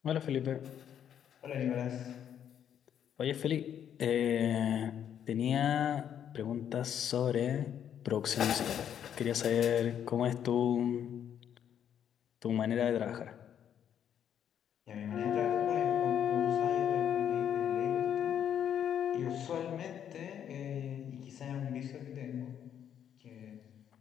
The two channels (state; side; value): quieter; right; 9.3 dB